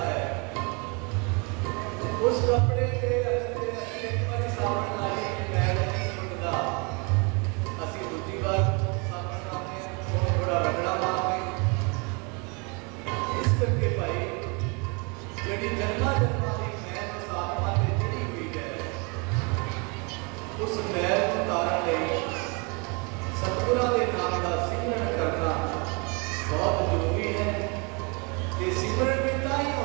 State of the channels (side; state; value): left; quieter; 31.7 dB